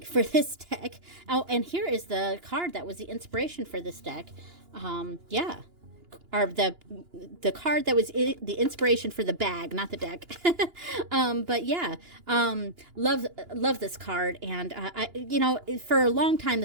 for this deck. Oh, and here is the card that was the inspiration for this deck. Yeah. Or the card that was the inspiration for the bag, not the deck. But yeah, love this card, and for a long time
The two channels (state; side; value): late; left; 2.9 ms